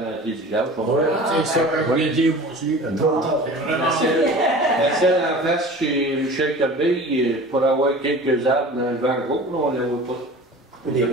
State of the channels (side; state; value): both; normal; correlation 0.40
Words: les villages. Ouais, C'est ça que je voulais dire moi aussi. Trop tard. La celle en face chez Michel Corbeil, pour avoir quelques arbres dans le vent gros, là, on ne les voit pas. Des